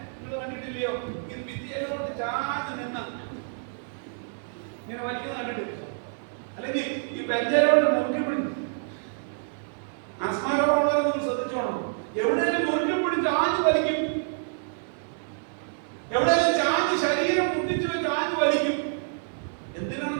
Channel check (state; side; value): silent; left; 60 dB below the other